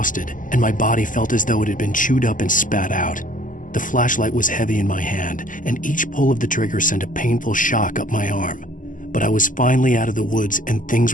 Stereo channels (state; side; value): late; right; 0.38 ms